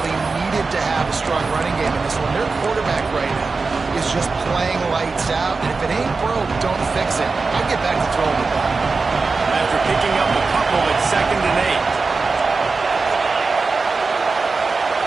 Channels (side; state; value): left; quieter; 4.2 dB